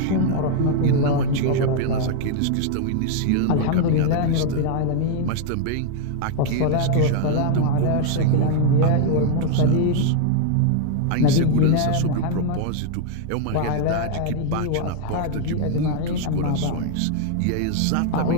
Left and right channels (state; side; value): different; both; correlation 0.00